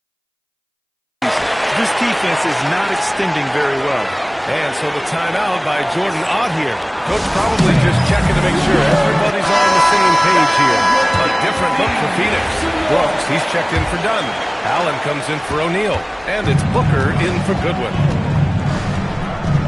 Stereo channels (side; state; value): both; identical; correlation 1.00